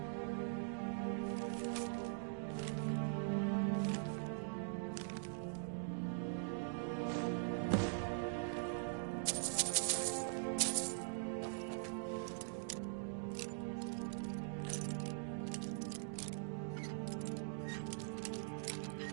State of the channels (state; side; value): silent; left; digital silence